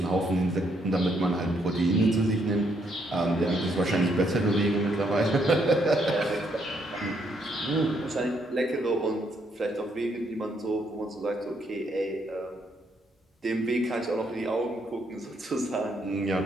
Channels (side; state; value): both; normal; correlation 0.73